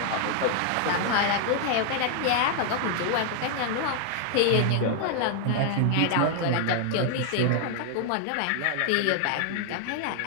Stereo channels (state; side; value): different; both; correlation 0.00